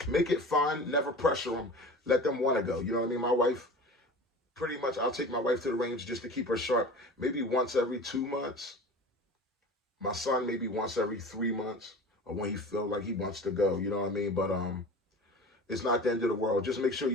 make it fun. Never pressure them. Let them want to go. You know what I mean? My wife, pretty much, I'll take my wife to the range just to keep her sharp. Maybe once every 2 months. My son maybe once every 3 months, or when he feels like he wants to go. You know what I mean? But it's not the end of the world. Just make sure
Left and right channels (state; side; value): normal; both; correlation 0.36